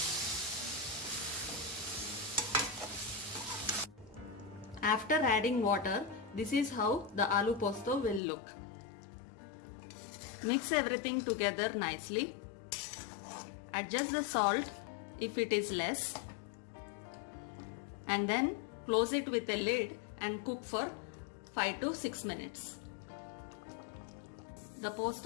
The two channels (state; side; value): drops out; right; at 8.2 s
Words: After adding water, this is how the aloo posto will look. Mix everything together nicely. Adjust the salt if it is less, and then close it with a lid and cook for 5 to 6 minutes. The